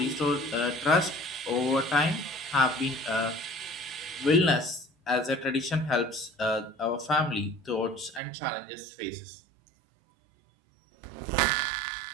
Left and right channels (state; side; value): drops out; left; at 8.2 s